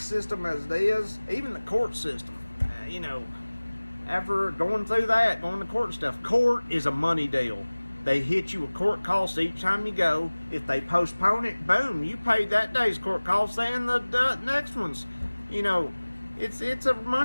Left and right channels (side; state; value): both; inverted; correlation -1.00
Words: as it is, even the court system. You know, after going through that, going to court and stuff, court is a money deal. They hit you with court costs each time you go. If they postpone it, boom, you paid that day's court costs and the next ones. You know, it's a